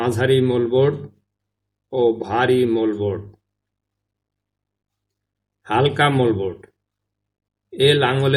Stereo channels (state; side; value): identical; both; correlation 1.00